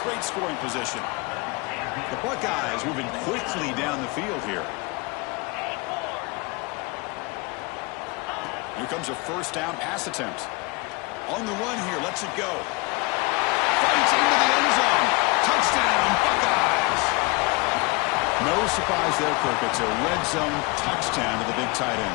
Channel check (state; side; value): quieter; right; 26.9 dB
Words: scoring position. The Buckeyes moving quickly down the field here. Here comes a first down pass attempt. On the run here, lets it go. Fights into the end zone. Touchdown, Buckeyes. No surprise there, Kirk. It's a red zone touchdown to the big tight